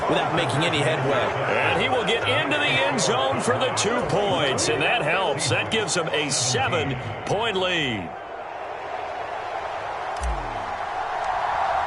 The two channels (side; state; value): both; identical; correlation 1.00